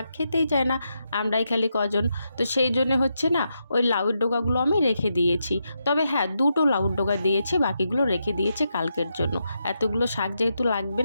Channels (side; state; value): both; inverted; correlation -0.84